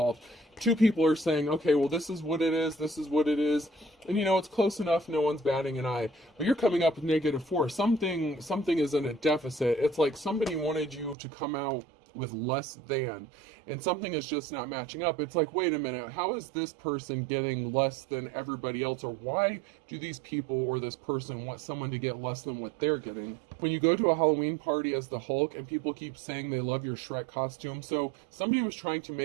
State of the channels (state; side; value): drops out; left; at 11.2 s